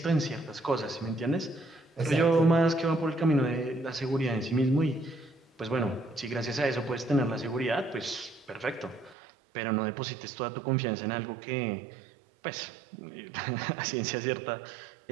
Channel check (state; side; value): drops out; left; at 9.2 s